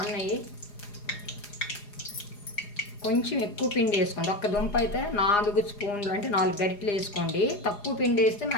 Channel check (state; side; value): late; right; 4.9 ms